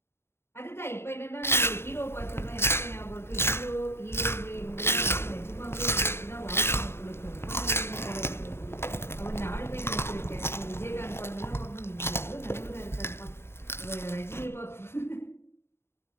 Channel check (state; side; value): late; right; 0.12 ms